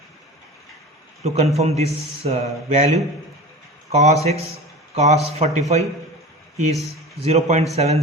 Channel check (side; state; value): both; normal; correlation 0.34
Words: to confirm this value. Cos x, cos 45 is